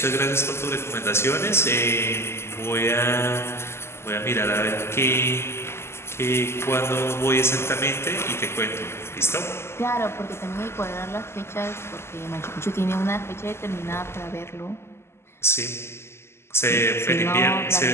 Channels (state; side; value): late; right; 0.12 ms